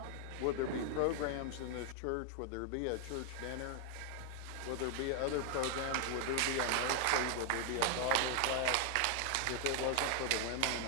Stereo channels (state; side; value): different; both; correlation 0.00